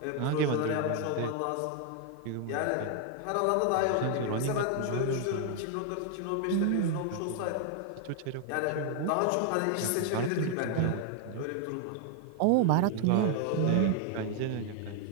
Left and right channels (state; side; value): different; both; correlation 0.00